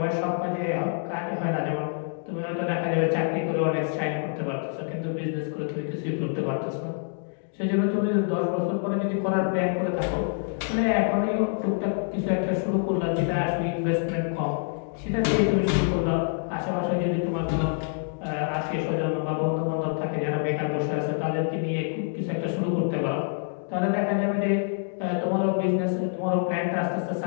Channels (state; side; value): silent; right; 61 dB below the other